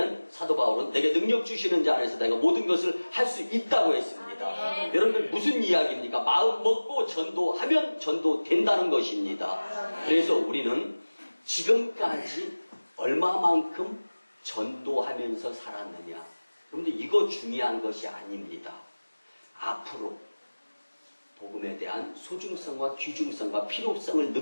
사도 바울은 내게 능력 주시는 자 안에서 내가 모든 것을 할 수 있다고 했습니다. 여러분들 무슨 이야기입니까? 마음 먹고 전도하면 전도된다는 것입니다. 그래서 우리는 지금까지 얼마만큼 전도하면서 살았느냐, 여러분들 이거 중요한 것이 아닙니다. 앞으로 복음에 대한 소중성과 귀중성과 필요성을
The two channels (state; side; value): inverted; both; correlation -1.00